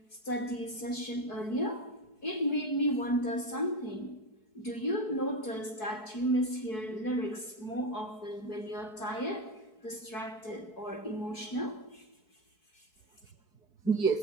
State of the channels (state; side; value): late; right; 4.7 ms